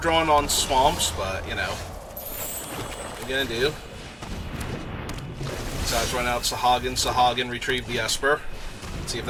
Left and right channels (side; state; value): both; identical; correlation 1.00